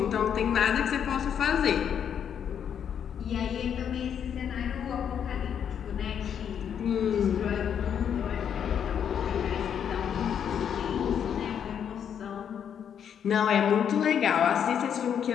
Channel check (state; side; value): quieter; right; 8.4 dB